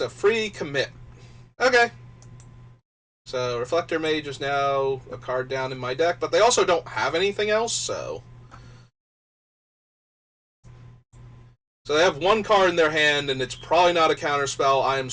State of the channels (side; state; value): both; identical; correlation 1.00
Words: a free commit. Okay. So, Reflector Mage is now a card down in my deck, but they also don't have anything else, so... So they have 1 card in their hand, and it's probably not a counterspell. I am